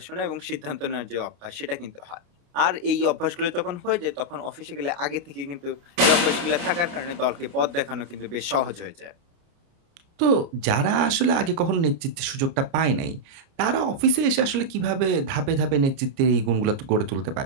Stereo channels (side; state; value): left; late; 29 ms